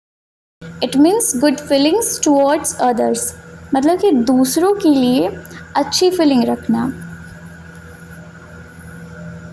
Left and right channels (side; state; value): both; identical; correlation 1.00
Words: It means good feelings towards others, मतलब कि दूसरों के लिए अच्छी फीलिंग रखना।